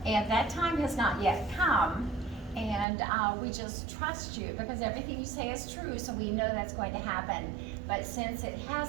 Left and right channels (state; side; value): drops out; left; at 2.9 s